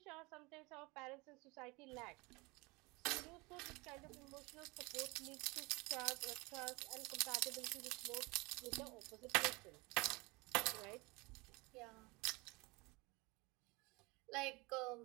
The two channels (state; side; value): quieter; left; 25.5 dB